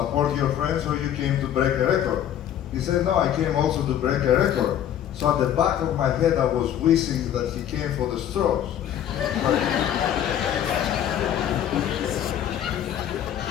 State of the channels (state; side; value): quieter; right; 10.5 dB